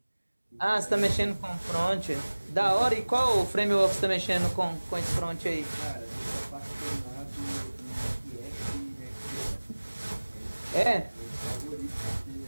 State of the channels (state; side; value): inverted; both; correlation -1.00